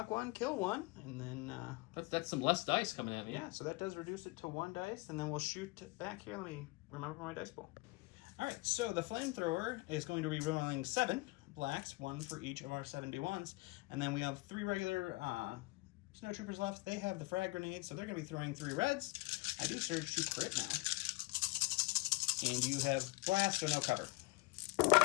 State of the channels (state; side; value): quieter; right; 24.1 dB